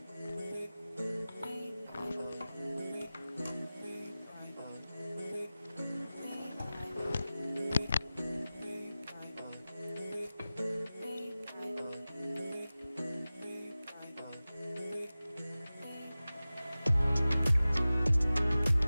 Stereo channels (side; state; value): both; inverted; correlation -0.97